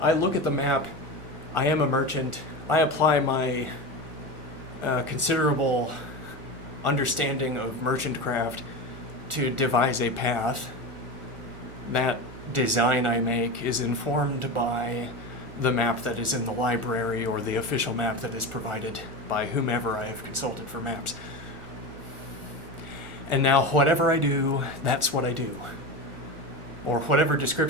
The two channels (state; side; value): late; left; 1.4 ms